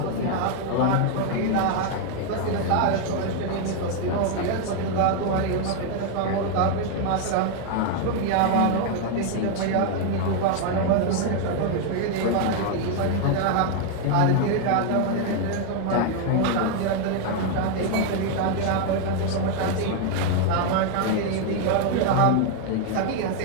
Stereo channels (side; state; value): both; different; correlation 0.00